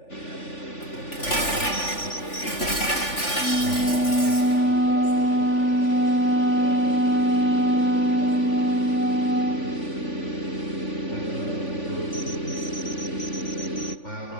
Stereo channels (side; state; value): right; late; 3.5 ms